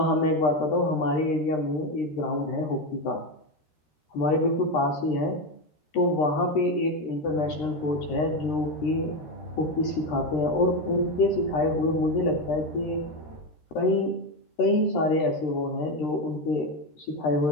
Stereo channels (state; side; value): late; right; 13 ms